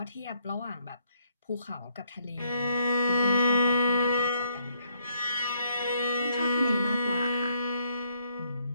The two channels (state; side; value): inverted; both; correlation -0.71